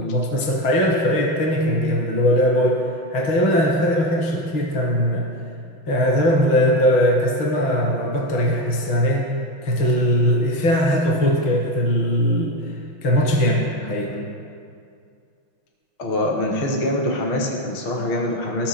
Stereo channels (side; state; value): right; late; 6.2 ms